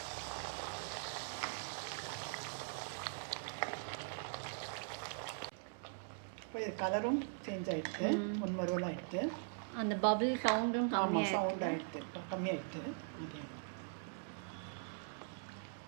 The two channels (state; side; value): silent; left; 50 dB below the other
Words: இப்போ இது கலரும் சேஞ்ச் ஆகிடுது, முன்மருவல் ஆகிடுது. அந்த பபிள் சவுண்டும் கம்மியாக சவுண்ட் ஆகிடுது, கம்மியாகிடுது.